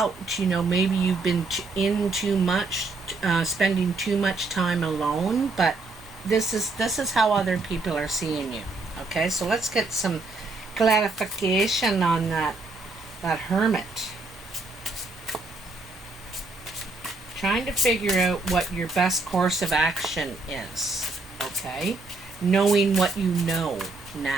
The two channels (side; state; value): left; quieter; 3.5 dB